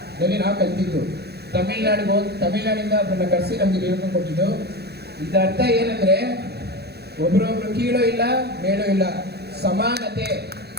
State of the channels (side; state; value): left; late; 0.47 ms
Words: ನಾವು ಕಲ್ತಿದ್ದು. ತಮಿಳ್ನಾಡಿಂದ ಒಬ್ಬರನ್ನ ಕರೆಸಿ ನಮ್ಗೆ ಹೇಳ್ಕೊಂಡು ಕೊಟ್ಟಿದ್ದು. ಇದರ ಅರ್ಥ ಏನಂದ್ರೆ ಒಬ್ರೊಬ್ರು ಕೀಳೋ ಇಲ್ಲ ಮೇಳೋ ಇಲ್ಲ, ಸಮಾನತೆ.